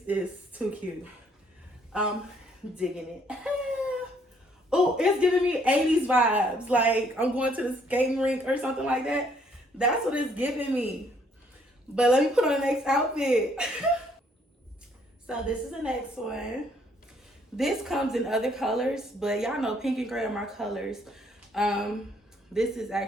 is too cute. Digging it. Oh, it's giving me 80s vibes. Like I'm going to the skating rink or something like that. That's what it's giving me. But let me put on the next outfit. So this is the next one. This comes in other colors, but y'all know pink and gray are my colors. This is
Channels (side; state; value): both; normal; correlation 0.66